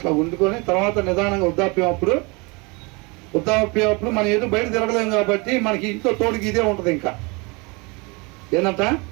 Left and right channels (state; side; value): quieter; left; 28.1 dB